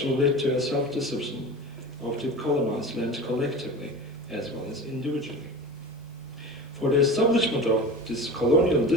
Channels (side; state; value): both; normal; correlation 0.32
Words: led to a self-discipline of the colonized land collectively as well as individually. For the establishment of this colonial